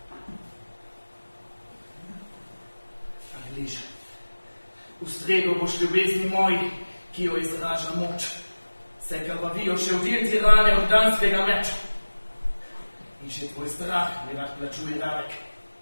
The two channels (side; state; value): both; inverted; correlation -1.00